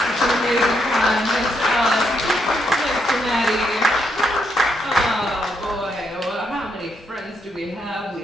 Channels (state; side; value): normal; both; correlation 0.78